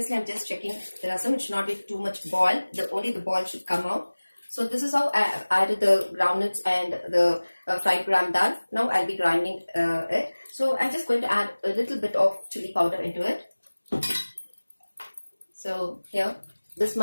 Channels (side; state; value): both; inverted; correlation -1.00